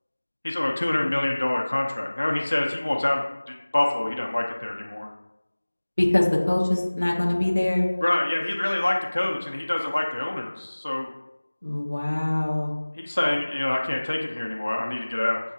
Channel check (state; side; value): inverted; both; correlation -1.00